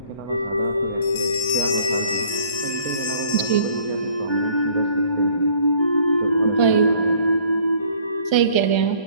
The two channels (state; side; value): late; right; 1.3 ms